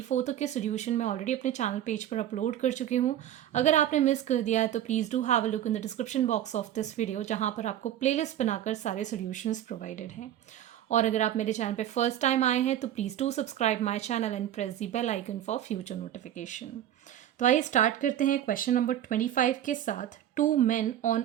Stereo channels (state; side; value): quieter; left; 11.5 dB